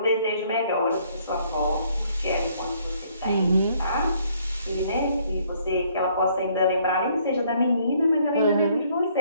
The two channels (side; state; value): both; inverted; correlation -0.65